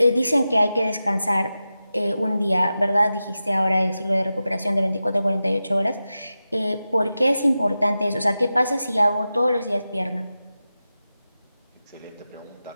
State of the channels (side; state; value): both; inverted; correlation -0.93